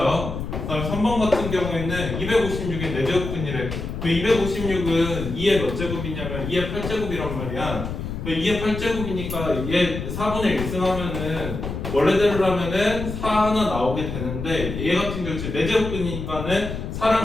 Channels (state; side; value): noise; left; rumble, 6 dB below the sound